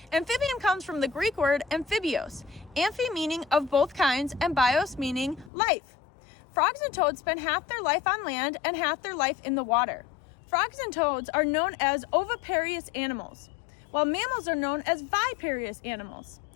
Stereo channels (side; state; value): right; drops out; at 5.5 s